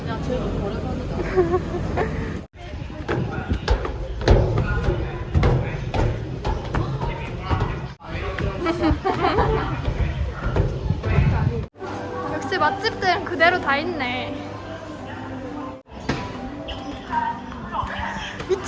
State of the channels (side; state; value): both; identical; correlation 1.00